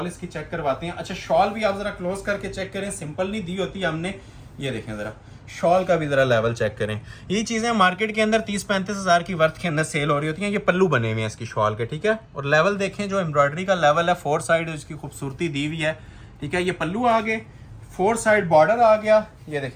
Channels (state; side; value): identical; both; correlation 1.00